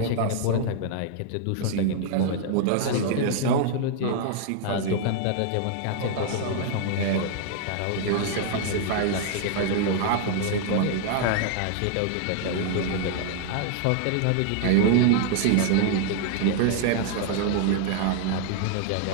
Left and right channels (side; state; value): both; different; correlation 0.00